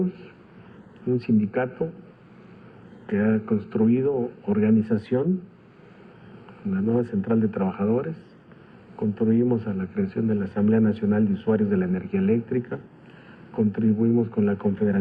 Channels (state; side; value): identical; both; correlation 1.00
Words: Un sindicato que ha construido organización, una nueva central de trabajadores. Contribuimos a la creación de la Asamblea Nacional de Usuarios de la Energía Eléctrica, contribuimos con la